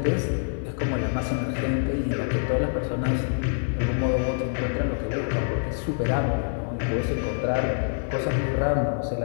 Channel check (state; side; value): silent; right; digital silence